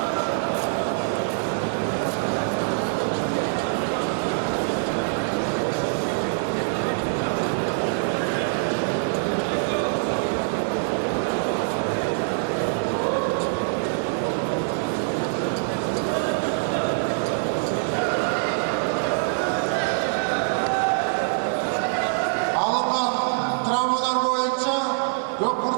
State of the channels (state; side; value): silent; left; 62 dB below the other